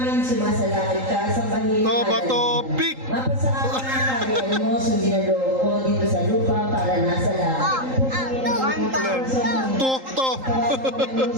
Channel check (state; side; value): late; left; 3.8 ms